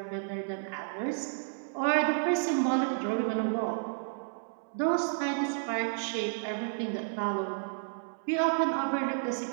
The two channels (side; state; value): left; silent; 57 dB below the other